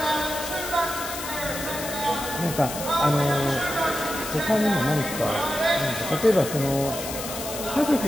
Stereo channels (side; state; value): left; noise; hiss, 8 dB below the sound